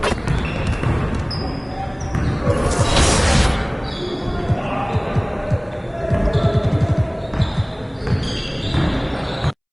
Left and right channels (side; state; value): both; identical; correlation 1.00